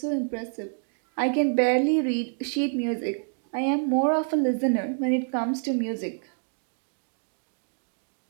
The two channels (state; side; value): silent; left; 60 dB below the other